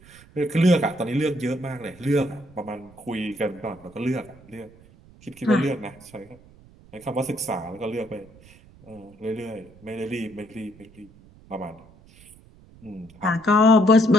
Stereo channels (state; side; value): noise; right; rumble, 24 dB below the sound